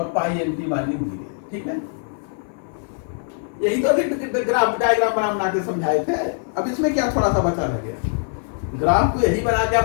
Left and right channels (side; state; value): right; silent; 58 dB below the other